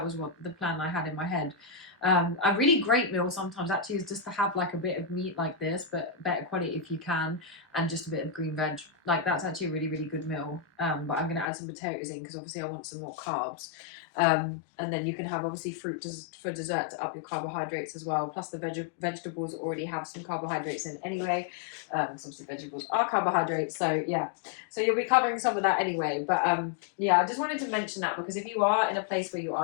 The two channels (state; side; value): drops out; right; at 11.5 s